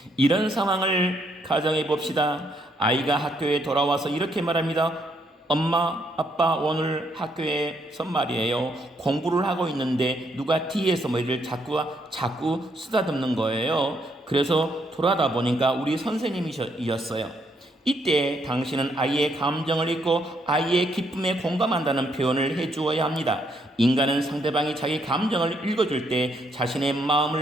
이런 상황을 가정해 봅시다. 아이가 학교에 돌아와서 이렇게 말합니다. 엄마, 아빠 오늘 학교에서 말이에요. 공부를 하고 있는데 누가 뒤에서 머리를 자꾸 쓰다듬는 거예요. 그래서 돌아다 보니까 우리 선생님이셨어요. 이때 당신은 아이의 감정을 읽고 아이의 기쁨에 공감한다는 표현을 해주어야 합니다. 인간은 상대방이 자기 감정을 읽어줄 때 자신의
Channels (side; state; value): both; normal; correlation 0.73